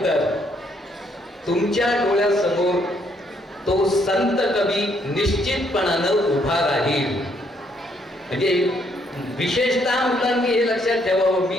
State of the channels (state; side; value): normal; both; correlation 0.70